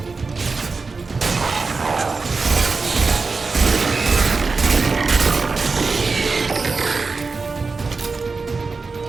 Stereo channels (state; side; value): quieter; left; 4.3 dB